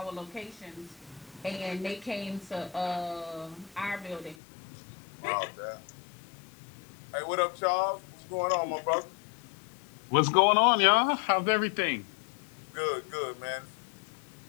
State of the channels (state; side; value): drops out; right; at 4.4 s